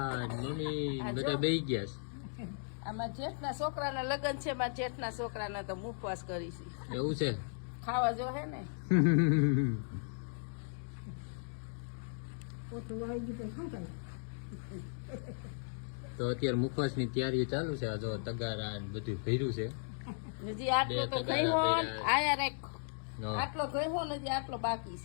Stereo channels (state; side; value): silent; right; digital silence